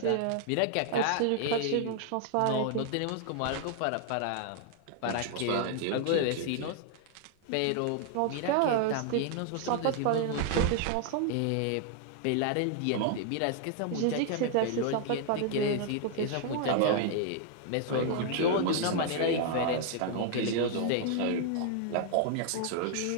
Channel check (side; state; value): both; different; correlation 0.00